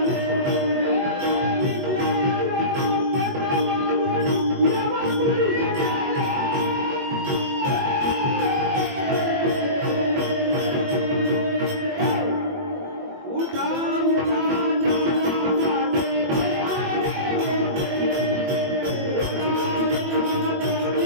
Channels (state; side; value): late; left; 21 ms